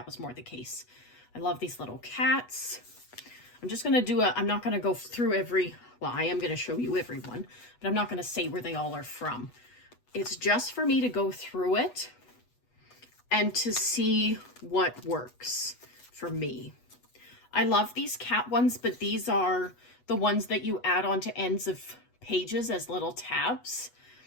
was more the case. I love these little cats. I'm just going to I'm not going to go through well, I am going to show you every one, but I'm not going to say where they all are from. It's just for me to go through it and to see what works for me. I love these cat ones, but these are the ones that you add onto ends of pages as little tabs.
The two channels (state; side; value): late; right; 8.2 ms